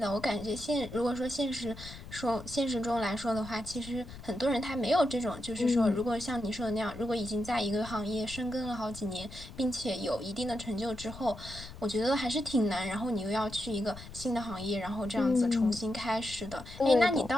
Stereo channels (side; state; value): left; noise; rumble, 14 dB below the sound